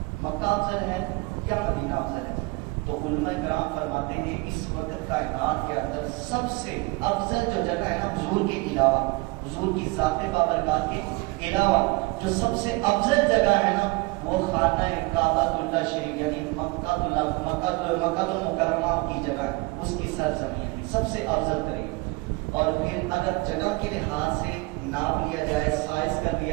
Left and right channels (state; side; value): quieter; left; 25.3 dB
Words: مکہ افضل ہے یا مدینہ افضل ہے؟ تو علماء کرام فرماتے ہیں اس وقت کائنات کے اندر سب سے افضل جو جگہ ہے نا حضور کے علاوہ، حضور کی ذات بابرکات کے علاوہ جو سب سے افضل جگہ ہے نا وہ خانہ کعبۃ اللہ شریف، یعنی مکہ المکرمہ کی جگہ، اس کی سرزمین سب سے افضل ترین۔ اور پھر اگر جگہ کے لحاظ سے ناپ لیا جائے، سائز کر